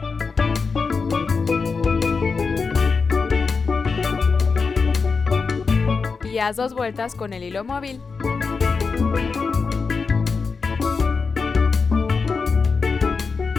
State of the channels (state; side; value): quieter; right; 4.8 dB